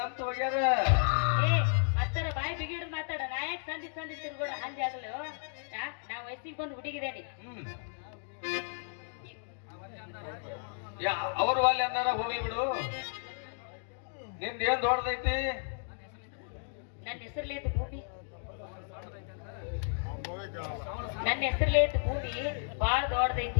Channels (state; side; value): silent; right; digital silence